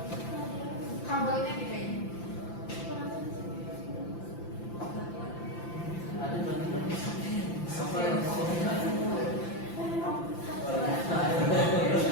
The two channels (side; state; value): right; late; 5.9 ms